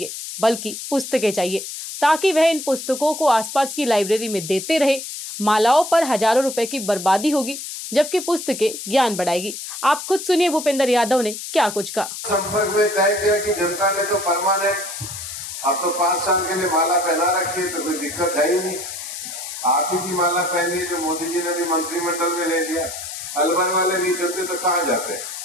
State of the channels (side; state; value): left; noise; hiss, 8 dB below the sound